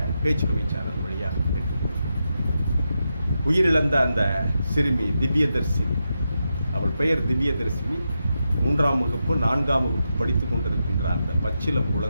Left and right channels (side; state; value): both; inverted; correlation -0.87